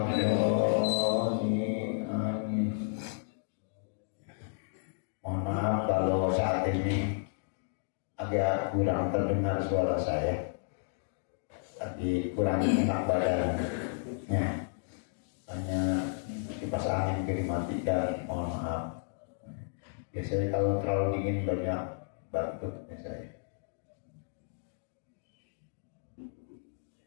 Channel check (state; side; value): silent; right; digital silence